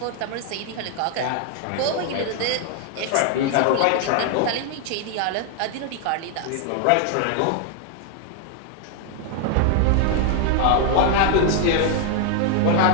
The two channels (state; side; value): different; both; correlation 0.00